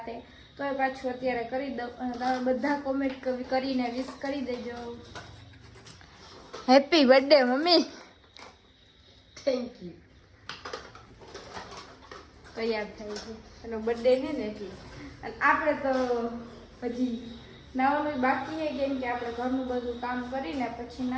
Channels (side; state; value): both; identical; correlation 1.00